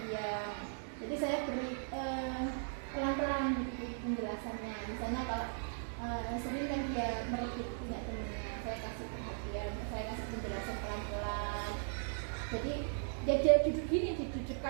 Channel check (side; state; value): left; silent; digital silence